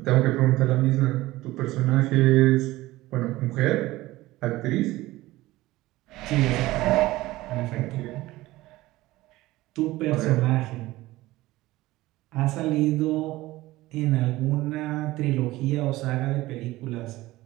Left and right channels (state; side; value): quieter; left; 18.0 dB